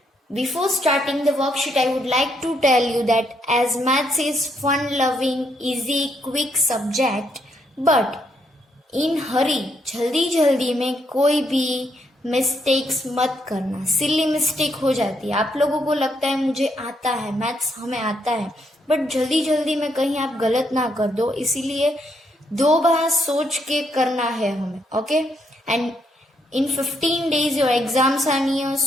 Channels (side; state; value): both; normal; correlation 0.75